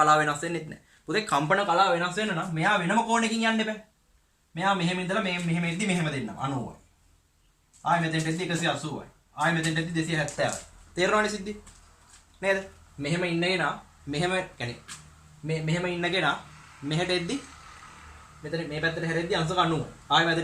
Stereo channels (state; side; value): identical; both; correlation 1.00